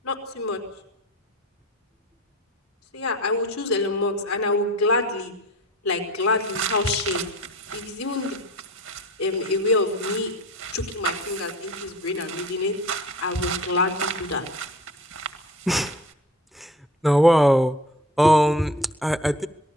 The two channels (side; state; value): both; normal; correlation 0.40